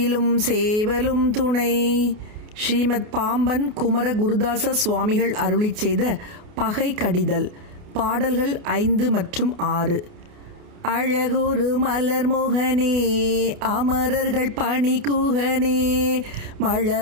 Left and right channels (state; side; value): late; left; 28 ms